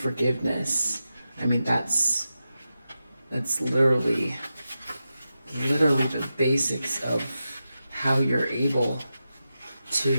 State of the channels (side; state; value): both; inverted; correlation -0.91